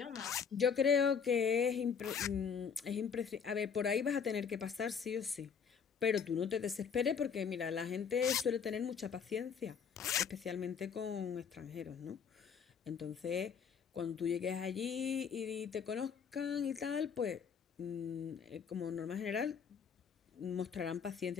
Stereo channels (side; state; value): right; quieter; 6.7 dB